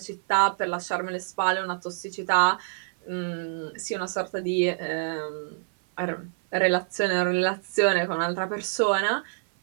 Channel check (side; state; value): left; silent; 56 dB below the other